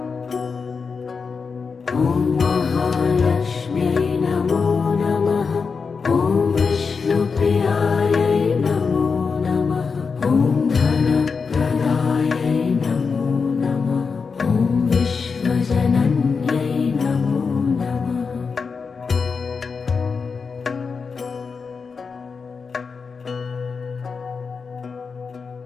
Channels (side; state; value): right; quieter; 5.2 dB